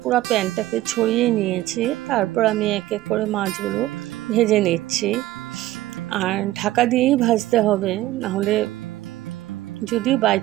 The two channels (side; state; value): left; quieter; 15.8 dB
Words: পুরো প্যানটাকে ছড়িয়ে নিয়েছি। তারপর আমি এক এক করে মাছগুলো ভেজে নিচ্ছি। আর ঢাকা দিয়েই ভাজতে হবে, নাহলে যদি বাই